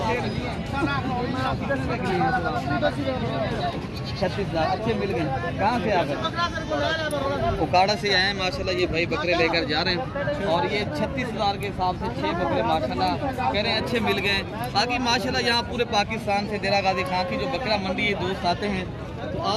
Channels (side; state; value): both; identical; correlation 1.00